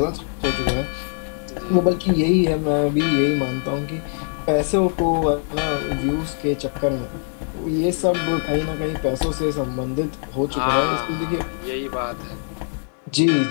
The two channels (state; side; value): silent; right; 64 dB below the other